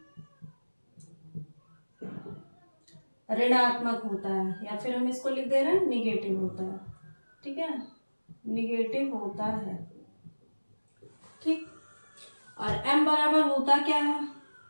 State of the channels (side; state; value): both; inverted; correlation -1.00